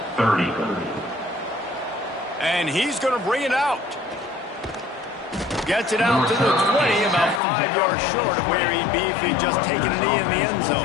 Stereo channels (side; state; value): right; drops out; at 7.4 s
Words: 30. And he's going to bring it out. Gets it out to the 20, about 5 yards short of where he'd be if he'd just taken a knee in the end